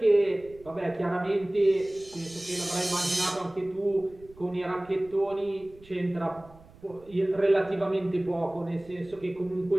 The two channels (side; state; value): right; noise; rumble, 24 dB below the sound